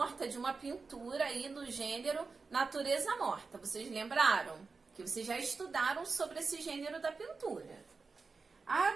de uma pintura aí no gênero natureza morta. Vocês lembraram? Que vocês já estudaram sobre esse gênero da pintura.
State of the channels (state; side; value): quieter; left; 4.4 dB